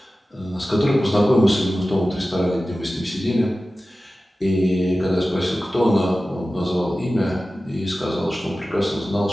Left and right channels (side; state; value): both; normal; correlation 0.95